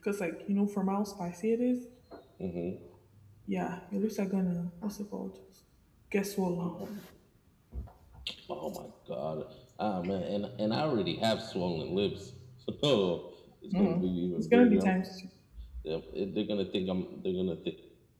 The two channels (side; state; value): both; identical; correlation 1.00